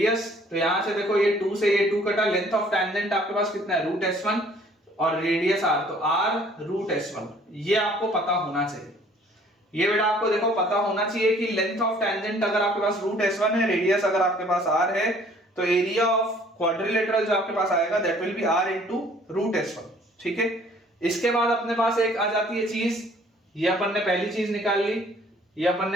तो यहां से देखो ये 2 से ये 2 कटा, लेंथ ऑफ टेंजेंट आपके पास कितना है, रूट S1 और रेडियस r, तो r रूट S1। ये आपको पता होना चाहिए, ये बेटा आपको देखो पता होना चाहिए कि लेंथ ऑफ टेंजेंट अगर आपके पास रूट S1 है, रेडियस अगर आपके पास r है, तो एरिया ऑफ क्वाड्रिलेटरल जो आपके पास आएगा that will be r into root S1। ठीक है, इसके बाद अपने पास एक आ जाती है चीज, ये अपन ने पहली चीज निकाल ली, ये अपन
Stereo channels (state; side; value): normal; both; correlation 0.57